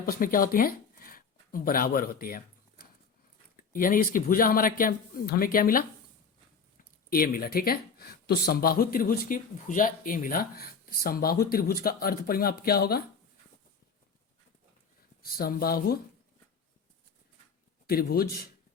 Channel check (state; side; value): quieter; right; 5.5 dB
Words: में क्या होती हैं, बराबर होती है। यानी इसकी भुजा हमारा क्या, हमें क्या मिला, ए मिला। ठीक है, तो समबाहु त्रिभुज की भुजा ए मिला। समबाहु त्रिभुज का अर्ध परिमाप क्या होगा, समबाहु त्रिभुज